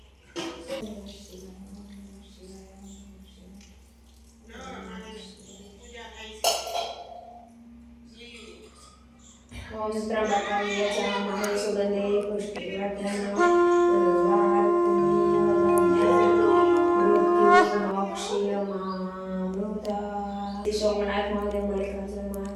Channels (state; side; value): identical; both; correlation 1.00